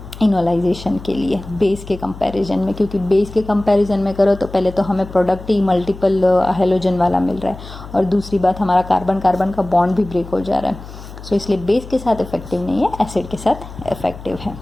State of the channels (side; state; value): left; noise; hum, 14 dB below the sound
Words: इनोलाइजेशन के लिए बेस के कंपैरिजन में, क्योंकि बेस के कंपैरिजन में करो तो पहले तो हमें प्रोडक्ट ही मल्टीपल हेलोजन वाला मिल रहा है, और दूसरी बात हमारा कार्बन कार्बन का बॉन्ड भी ब्रेक हो जा रहा है। सो इसलिए बेस के साथ इफेक्टिव नहीं है, एसिड के साथ इफेक्टिव है।